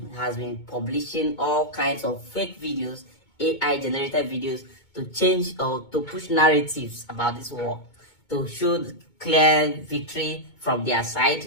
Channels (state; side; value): late; right; 2.2 ms